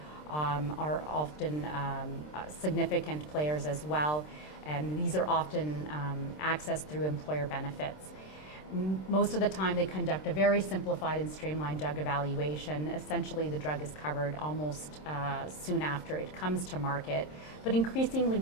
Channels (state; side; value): late; right; 26 ms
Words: are often significant players as well, and these are often accessed through employer benefits. Most of the time they conduct a very simplified and streamlined drug evaluation. Essentially the drug is covered almost soon after it comes to market, but increasingly